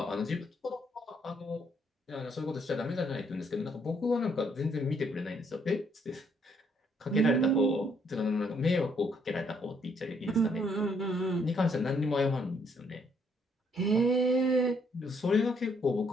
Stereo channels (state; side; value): normal; both; correlation 0.69